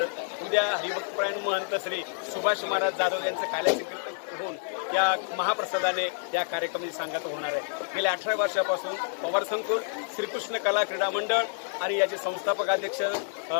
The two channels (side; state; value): right; silent; digital silence